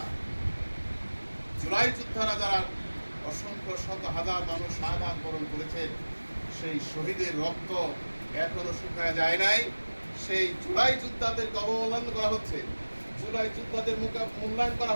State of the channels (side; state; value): both; inverted; correlation -1.00